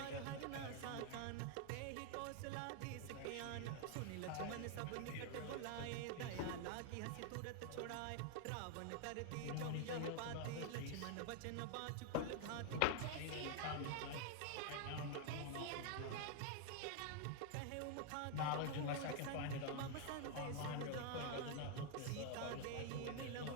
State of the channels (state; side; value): different; both; correlation 0.00